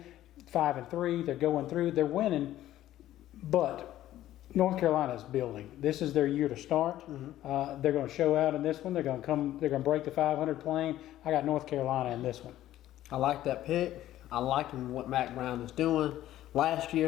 5-3, they're going through, they're winning, but North Carolina is building. This is their year to start. They're going to show out in this one. They're going to break the 500 plane. I got North Carolina in this one. I like that pick. I like what Mac Brown is doing. Last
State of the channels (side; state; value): right; quieter; 13.6 dB